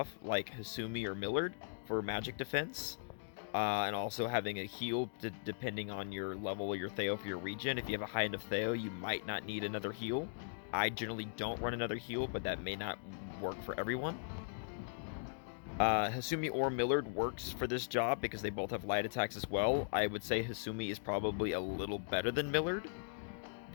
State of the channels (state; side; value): silent; right; digital silence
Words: like Hasumi or Millard, for magic defense. And also having a heal, depending on your level of your Theo for your regen. If you have a high enough Theo, you might not need another heal. I generally don't run another heal, but that may not work for everyone. Hasumi or Millard works for this job because they both have light attacks as well. I would say Hasumi is probably a little better than Millard,